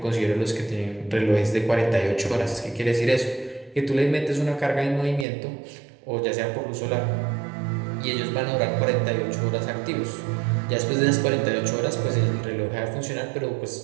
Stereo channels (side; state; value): left; drops out; at 5.2 s